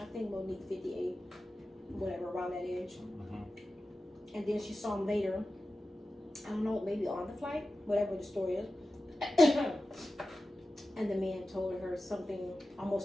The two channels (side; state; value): both; normal; correlation 0.94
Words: I think Monique 58, whatever, around that age. Mm-hmm. And then she saw him later, I don't know, maybe on the flight, whatever the story is. And the man told her something